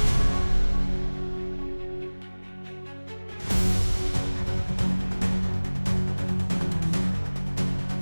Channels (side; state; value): both; inverted; correlation -1.00